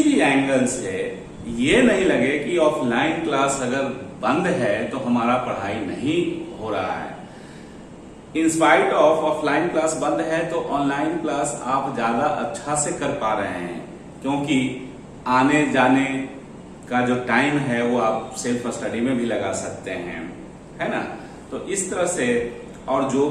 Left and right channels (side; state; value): both; identical; correlation 1.00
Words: भी एंगल से ये नहीं लगे कि ऑफलाइन क्लास अगर बंद है तो हमारा पढ़ाई नहीं हो रहा है। इंस्पाइट ऑफ ऑफलाइन क्लास बंद है तो ऑनलाइन क्लास आप ज्यादा अच्छा से कर पा रहे हैं, क्योंकि आने जाने का जो टाइम है वो आप सेल्फ स्टडी में भी लगा सकते हैं, है ना। तो इस तरह से और जो